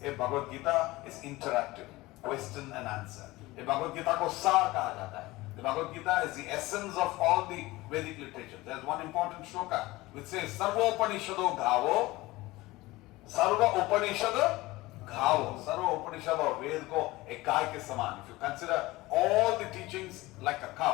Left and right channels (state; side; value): quieter; right; 19.8 dB